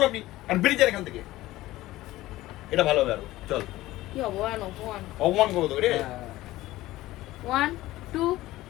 আপনি আর বেরিয়ে যান এখান থেকে। এটা ভালো হবে আরো, চল। কি অপমান অপমান। অপমান করবো তোকে রে। 1 2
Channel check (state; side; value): quieter; right; 16.9 dB